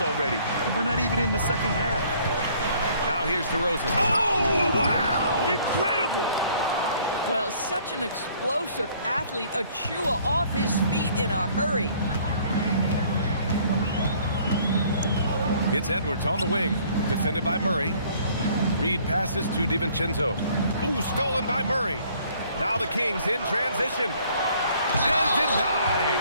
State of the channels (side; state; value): both; inverted; correlation -0.59